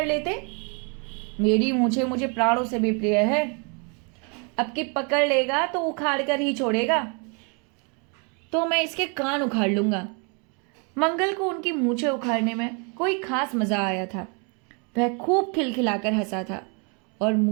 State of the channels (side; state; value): left; quieter; 35.4 dB